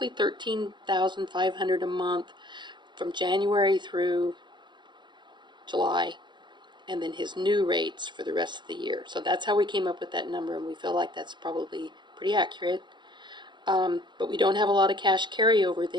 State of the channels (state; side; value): late; left; 0.22 ms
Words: 13,500 a month from January through July, and then his new rates for the rest of the year. So that's how we came up with that number, and we feel like that's probably pretty accurate. But we don't have a lot of cash carryover